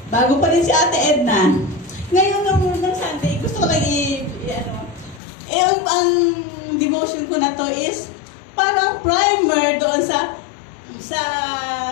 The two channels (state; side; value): drops out; right; at 5.2 s